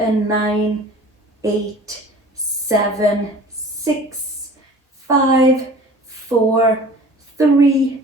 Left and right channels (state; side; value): normal; both; correlation 0.44